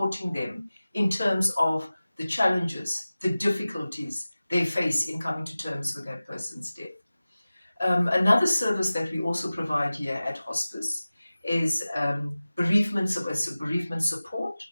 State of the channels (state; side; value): inverted; both; correlation -0.97